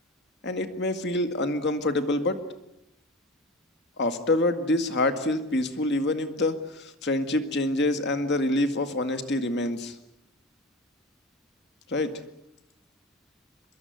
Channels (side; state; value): both; normal; correlation 0.30